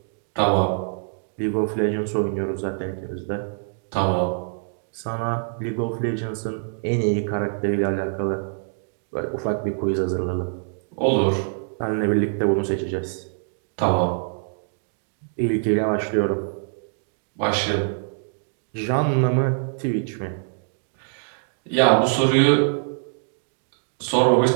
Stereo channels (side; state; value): left; silent; digital silence